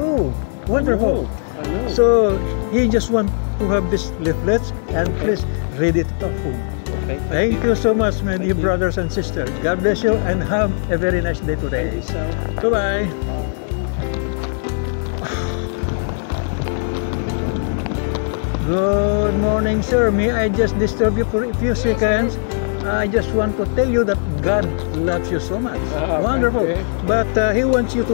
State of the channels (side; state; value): right; silent; 63 dB below the other